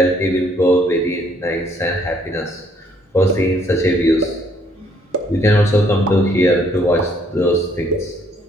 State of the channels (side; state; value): both; normal; correlation 0.66